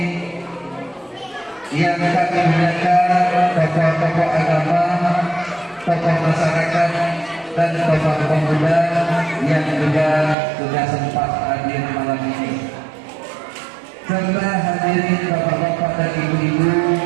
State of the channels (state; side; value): drops out; left; at 10.4 s